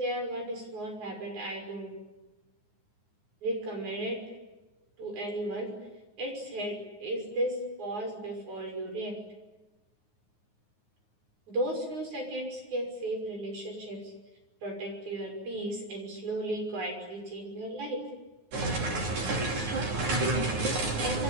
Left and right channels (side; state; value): left; late; 9.5 ms